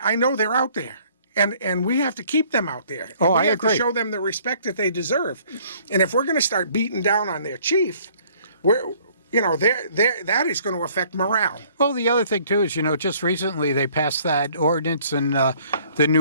know they're out there, and we have to keep them out there. Oh, I agree. We have to show them the respect that they deserve, and if we're going to start beating down on their chief, that is going to affect morale. Well, the other thing, too, is, just recently they passed that ordinance and the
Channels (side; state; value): both; inverted; correlation -0.58